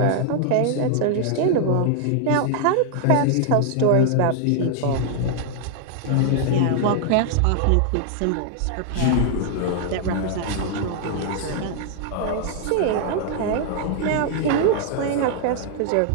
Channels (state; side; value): different; both; correlation 0.00